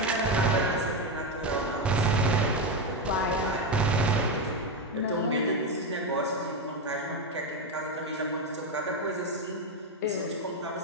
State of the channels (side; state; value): both; normal; correlation 0.10